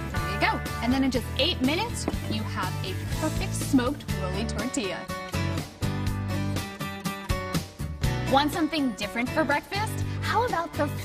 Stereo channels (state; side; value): identical; both; correlation 1.00